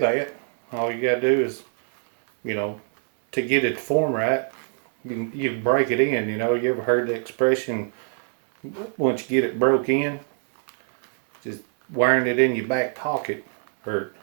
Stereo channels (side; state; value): left; silent; 59 dB below the other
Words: All you gotta do is, to get it to form right, you break it in. You ever heard the expression, once you get it broke in, just wearing it in your back pocket or